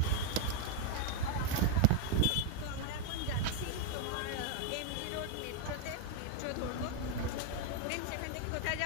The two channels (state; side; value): different; both; correlation 0.01